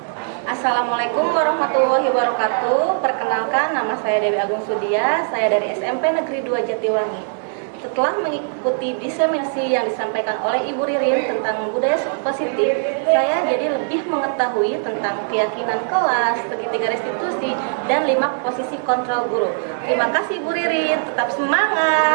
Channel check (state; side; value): silent; left; digital silence